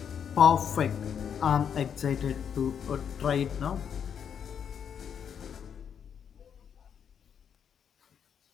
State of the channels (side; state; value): right; quieter; 7.9 dB